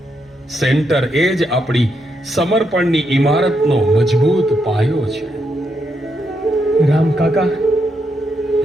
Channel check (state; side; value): normal; both; correlation 0.80